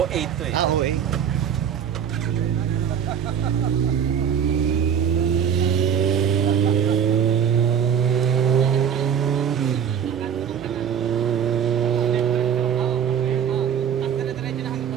8 to eh. Ah, oo eh.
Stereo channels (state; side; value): quieter; left; 8.1 dB